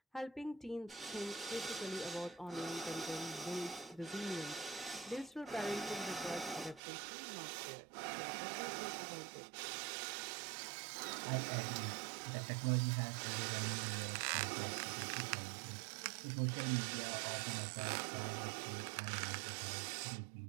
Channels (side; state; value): left; drops out; at 6.8 s